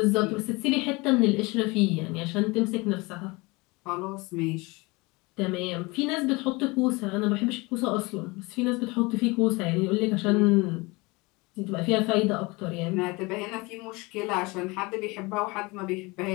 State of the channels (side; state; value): right; quieter; 24.9 dB